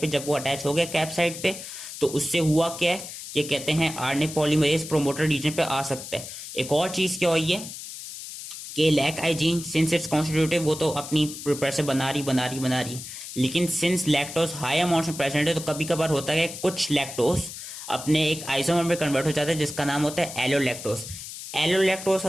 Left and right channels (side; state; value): left; noise; hiss, 11 dB below the sound